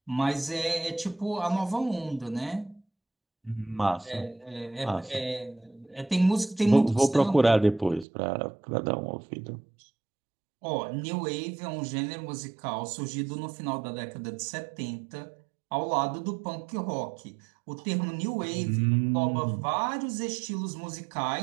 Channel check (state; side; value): drops out; left; at 8.1 s